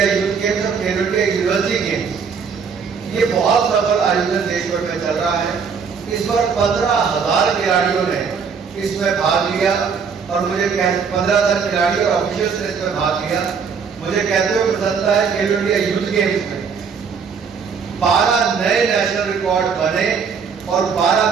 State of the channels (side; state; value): left; quieter; 6.0 dB